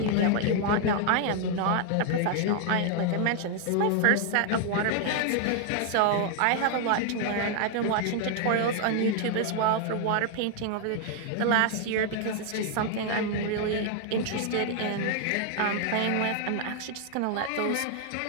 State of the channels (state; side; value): different; both; correlation 0.00